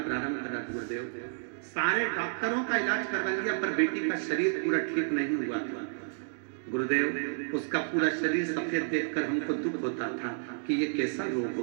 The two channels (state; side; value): silent; left; digital silence